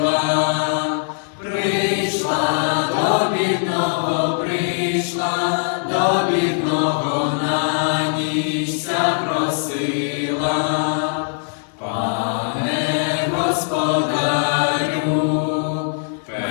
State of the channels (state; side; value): silent; right; digital silence